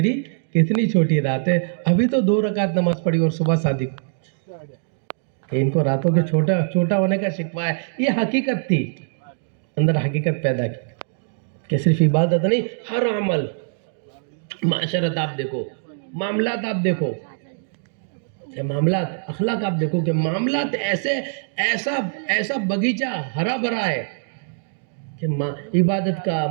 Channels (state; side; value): silent; left; digital silence